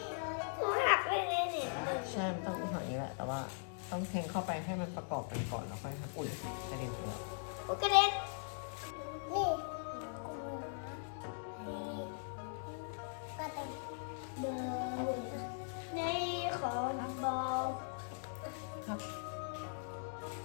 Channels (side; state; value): right; silent; digital silence